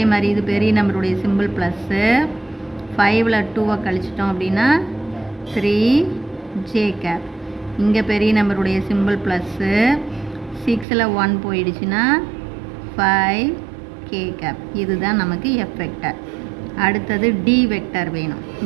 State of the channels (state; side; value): drops out; left; at 10.9 s